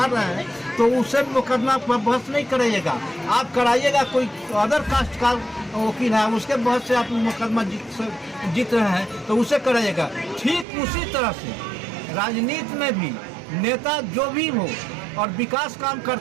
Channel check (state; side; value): drops out; left; at 10.7 s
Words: रहे हैं तो उससे मुकदमा पर बहस नहीं कराइएगा, आप कराइएगा कोई अदर कास्ट का वकील है उसके बहस से आप मुकदमा जीत रहे हैं तो उसे कराइएगा। ठीक उसी तरह से राजनीति में भी नेता जो भी हो और विकास काम